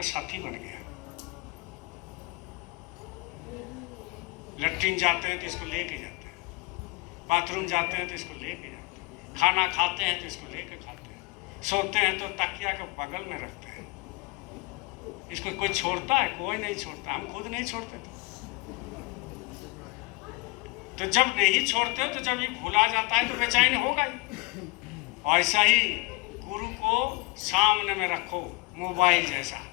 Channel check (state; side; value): quieter; right; 25.6 dB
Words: साथी बन गया। लैट्रिन जाते हैं तो इसको लेके जाते हैं, बाथरूम जाते हैं तो इसको लेके जाते हैं, खाना खाते हैं तो इसको लेके खाते हैं, सोते हैं तो तकिया के बगल में रखते हैं। इसको कोई छोड़ता है? कोई नहीं छोड़ता, हम खुद नहीं छोड़ते थे। तो जब नहीं छोड़ते तो जब ये भुला जाता है तो बेचैन होगा ही। ऐसा ही गुरु को सामने में रखो, मोबाइल जैसा,